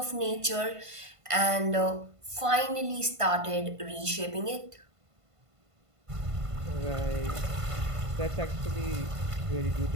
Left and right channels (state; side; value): late; left; 1.5 ms